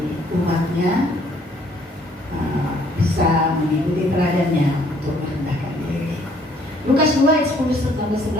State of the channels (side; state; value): both; normal; correlation 0.63